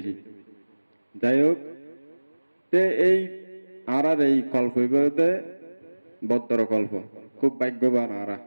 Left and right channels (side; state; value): both; inverted; correlation -1.00